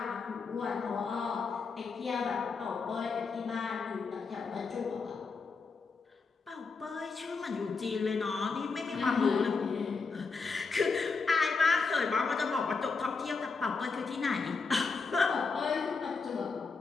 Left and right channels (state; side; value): quieter; right; 4.6 dB